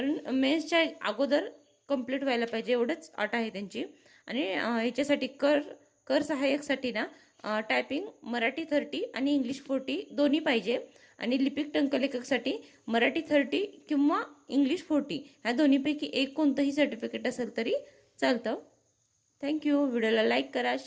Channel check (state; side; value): identical; both; correlation 1.00